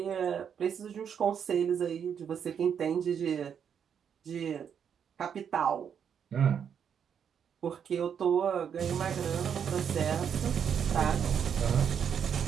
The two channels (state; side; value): quieter; left; 7.8 dB